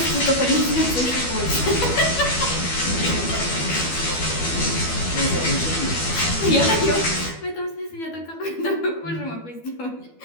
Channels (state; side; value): late; right; 12 ms